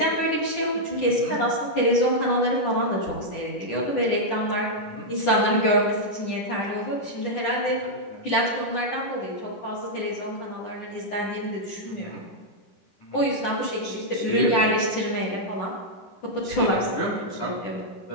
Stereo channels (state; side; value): late; right; 10 ms